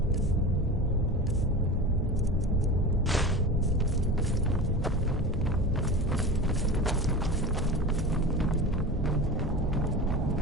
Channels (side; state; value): both; normal; correlation 0.30